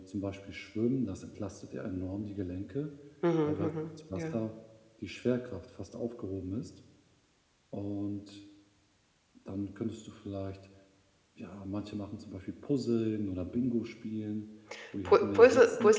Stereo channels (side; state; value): both; identical; correlation 1.00